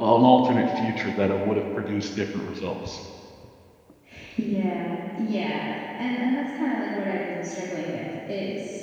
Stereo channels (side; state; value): both; identical; correlation 1.00